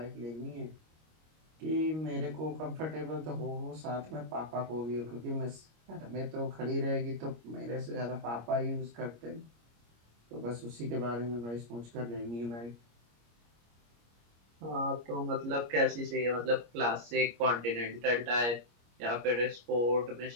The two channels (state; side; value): late; left; 25 ms